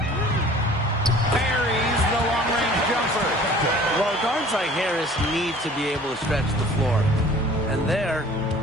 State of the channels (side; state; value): both; normal; correlation 0.49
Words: the long-range jumper. Well, guards like Harris need to be able to stretch the floor. And there,